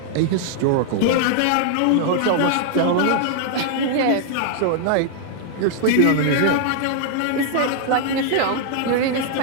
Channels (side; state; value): both; different; correlation 0.00